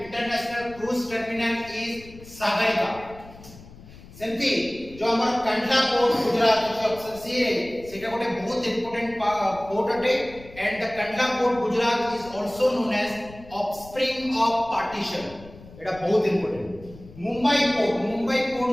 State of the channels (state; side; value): noise; left; rumble, 19 dB below the sound